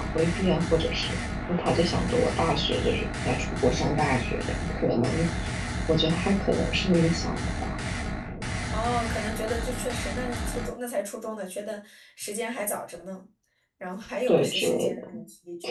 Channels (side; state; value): both; identical; correlation 1.00